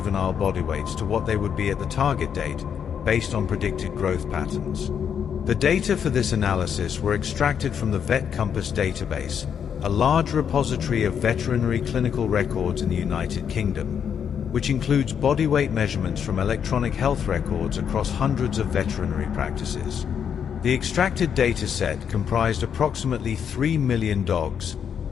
body weights to what they would be at the target date based on predicted growth patterns. The data for this analysis were extracted from the VetCompass database, a large repository of veterinary clinical records in the United Kingdom, which includes body weight measurements from electronic health records across hundreds of veterinary practices. The extracted data set comprised approximately 3 million dogs,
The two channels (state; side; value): quieter; right; 7.9 dB